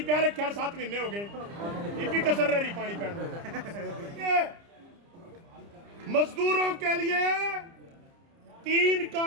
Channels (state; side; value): late; left; 30 ms